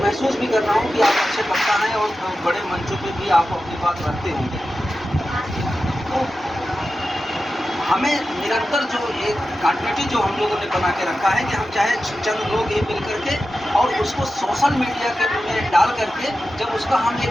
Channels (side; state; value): both; normal; correlation 0.93